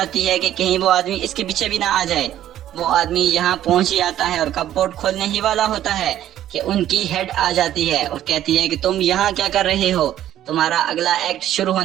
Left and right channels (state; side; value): quieter; left; 12.0 dB